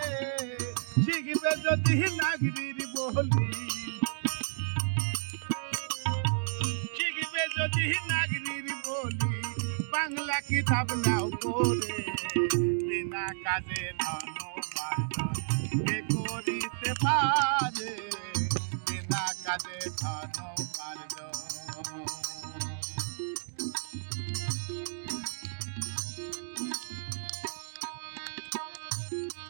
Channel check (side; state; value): left; silent; digital silence